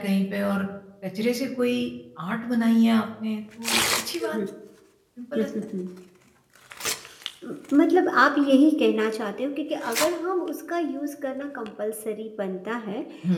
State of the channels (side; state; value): both; identical; correlation 1.00